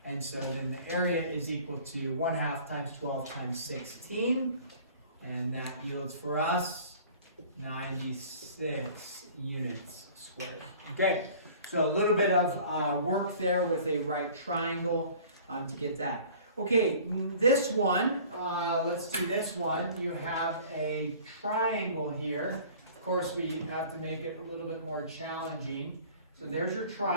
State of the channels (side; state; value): both; inverted; correlation -0.47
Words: And so then the area is equal to 1/2 times 12 times 16. And that yields for us 96 units squared. Okay, so a little bit of work there with a right triangle to get that. Okay, this one, let's do this one. You have a triangle here. Of course, we have to make it a little bit more challenging. So there's your